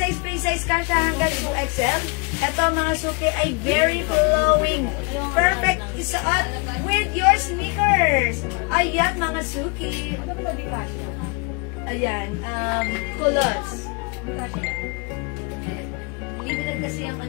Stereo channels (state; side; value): quieter; right; 31.5 dB